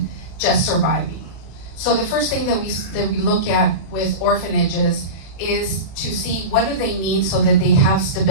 just surviving. So the first thing that we look at with orphanages is to see what do they need so that they have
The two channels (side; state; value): right; late; 36 ms